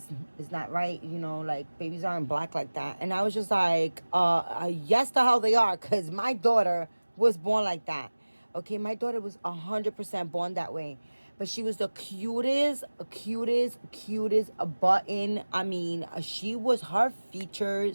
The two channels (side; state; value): both; inverted; correlation -1.00